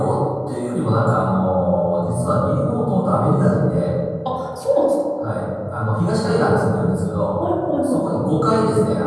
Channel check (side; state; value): both; identical; correlation 1.00